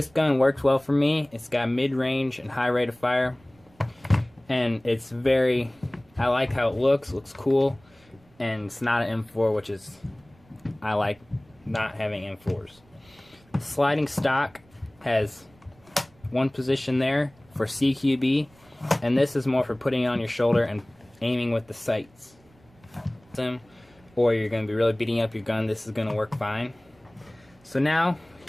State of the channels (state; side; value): noise; right; rumble, 30 dB below the sound